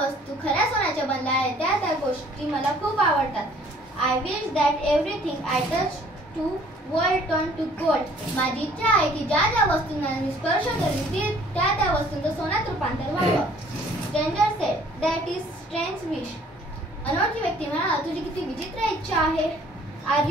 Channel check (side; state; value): both; normal; correlation 0.57